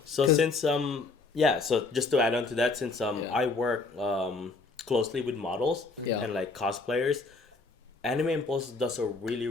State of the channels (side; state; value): right; quieter; 3.8 dB